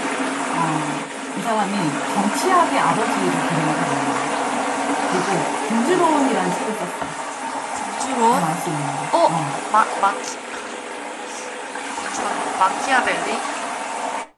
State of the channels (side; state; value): both; identical; correlation 1.00